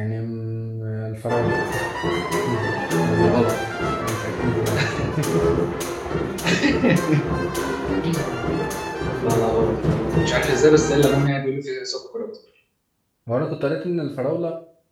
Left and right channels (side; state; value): both; identical; correlation 1.00